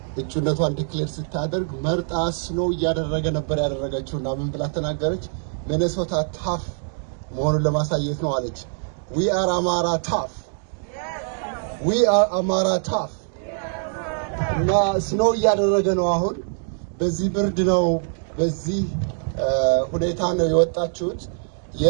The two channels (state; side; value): silent; left; 63 dB below the other